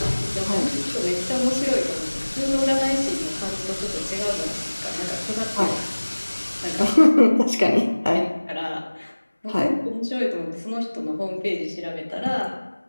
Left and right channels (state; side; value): inverted; both; correlation -1.00